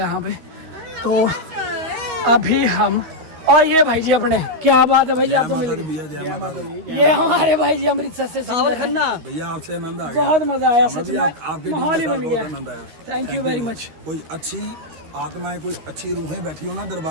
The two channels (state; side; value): late; left; 13 ms